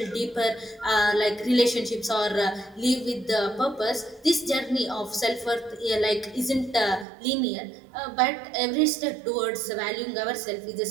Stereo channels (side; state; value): left; drops out; at 7.1 s